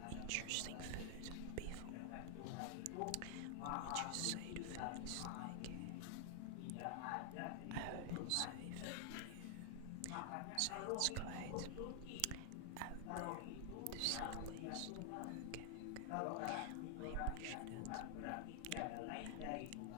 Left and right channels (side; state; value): both; different; correlation 0.00